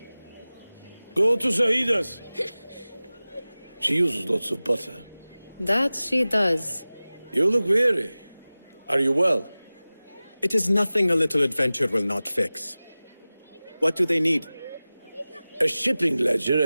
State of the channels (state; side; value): inverted; both; correlation -0.98